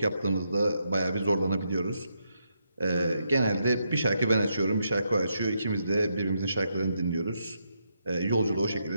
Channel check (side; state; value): both; inverted; correlation -0.80